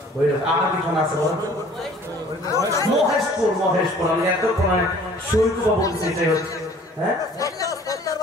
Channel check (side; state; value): both; normal; correlation 0.52